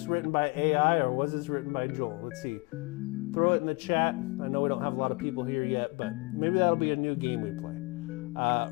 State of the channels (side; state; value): right; quieter; 26.8 dB